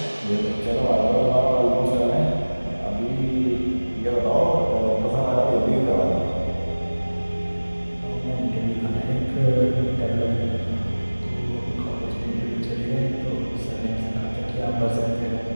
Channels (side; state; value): both; inverted; correlation -1.00